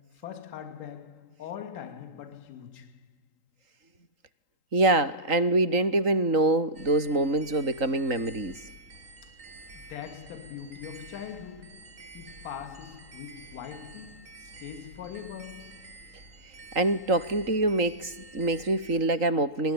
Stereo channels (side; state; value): left; late; 3.8 ms